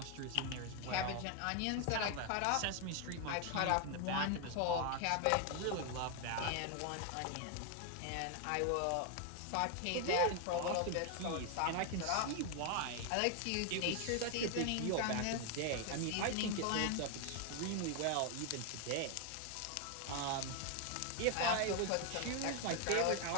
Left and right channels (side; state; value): both; different; correlation 0.01